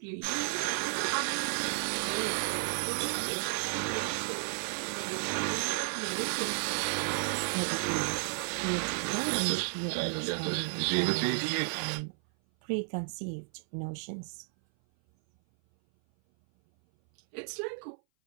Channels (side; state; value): left; silent; 56 dB below the other